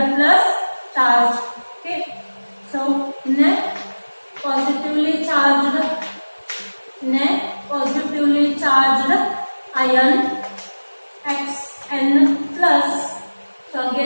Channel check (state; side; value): inverted; both; correlation -1.00